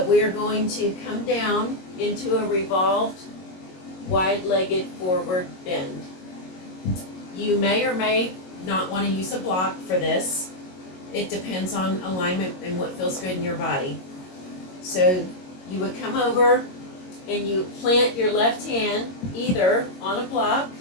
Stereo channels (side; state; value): right; late; 22 ms